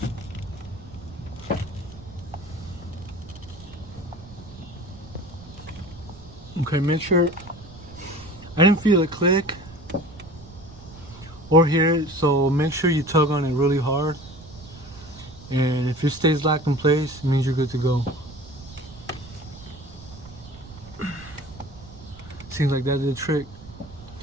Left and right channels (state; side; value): noise; right; rumble, 18 dB below the sound